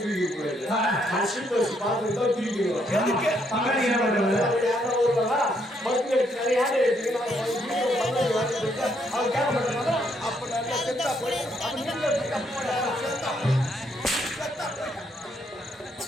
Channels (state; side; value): normal; both; correlation 0.73